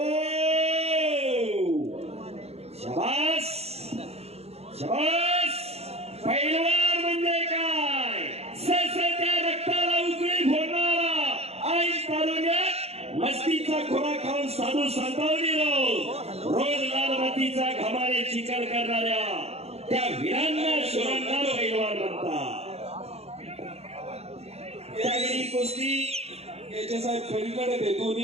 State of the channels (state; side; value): late; left; 0.30 ms